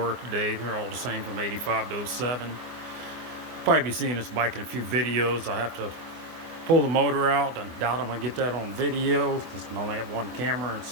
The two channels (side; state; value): left; late; 24 ms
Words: today. They're all the same from 85 to 07. Probably be seeing this bike in a few videos. I have to pull the motor out. I doubt I'm going to get that on video because I only have one camera and it's